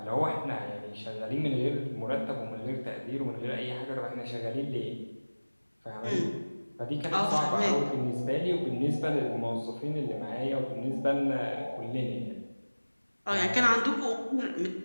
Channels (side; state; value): both; inverted; correlation -1.00